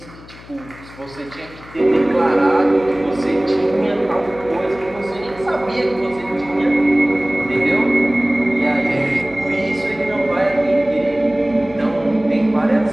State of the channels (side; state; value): left; noise; hum, 19 dB below the sound